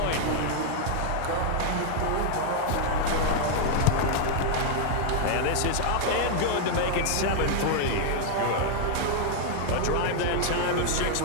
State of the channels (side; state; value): both; different; correlation 0.00